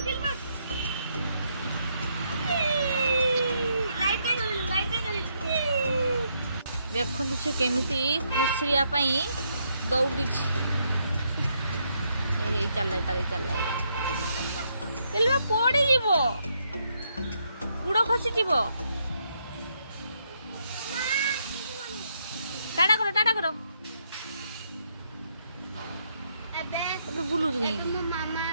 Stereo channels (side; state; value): both; inverted; correlation -0.76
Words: देखु से केमिति खसरिया पई दौड़ी चल पड़ी जीवो गुड़ खसी जीवो टाटा करो एबे बुलु गई मामा